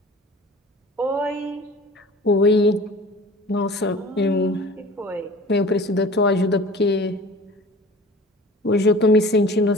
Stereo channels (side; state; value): both; normal; correlation 0.43